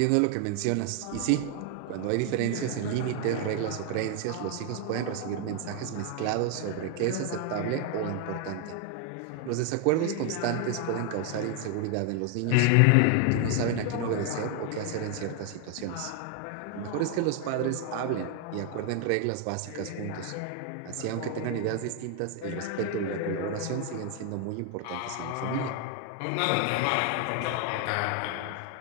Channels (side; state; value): both; different; correlation 0.00